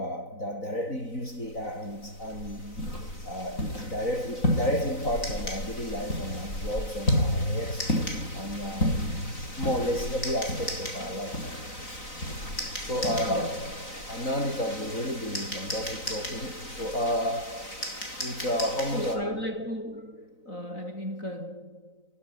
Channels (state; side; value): late; right; 3.9 ms